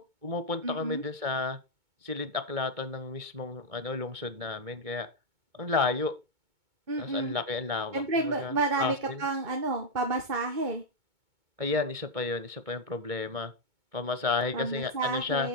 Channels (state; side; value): late; left; 2.2 ms